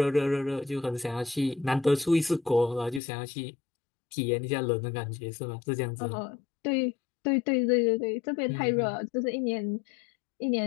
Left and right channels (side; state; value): right; drops out; at 3.0 s